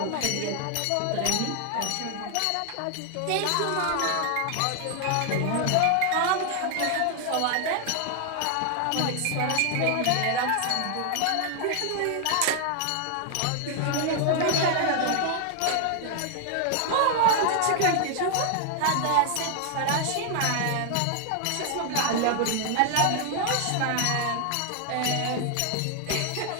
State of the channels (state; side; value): different; both; correlation 0.00